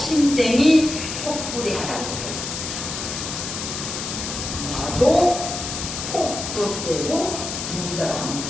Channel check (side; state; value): left; noise; hiss, 5 dB below the sound